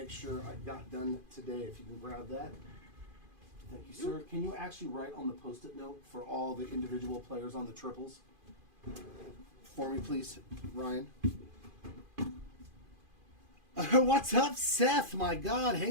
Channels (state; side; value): late; left; 2.5 ms